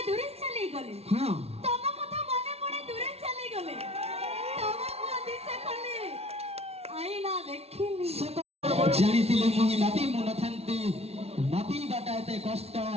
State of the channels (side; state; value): left; late; 0.30 ms